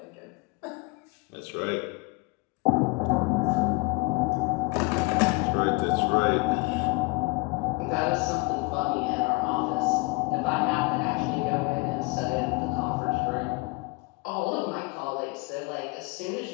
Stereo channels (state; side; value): quieter; right; 26.6 dB